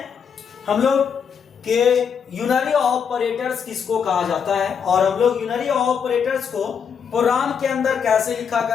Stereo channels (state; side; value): quieter; right; 6.9 dB